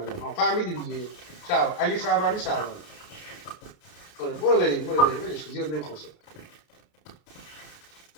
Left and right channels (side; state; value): right; late; 33 ms